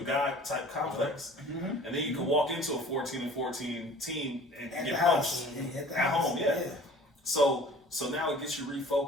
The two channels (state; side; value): normal; both; correlation 0.47